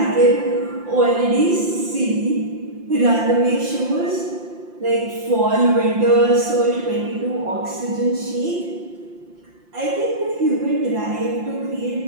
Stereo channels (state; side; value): late; left; 5.7 ms